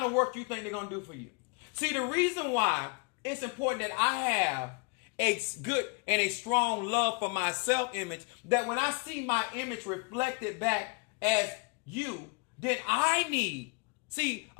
of work you think they're going to do for you? See, the reason why it's important that I have a good and a strong love for my self-image, that when I see my image reflected back as you, then I need. See,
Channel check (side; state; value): right; quieter; 31.2 dB